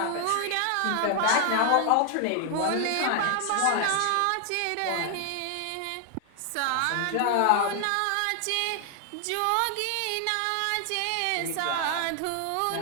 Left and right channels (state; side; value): different; both; correlation 0.00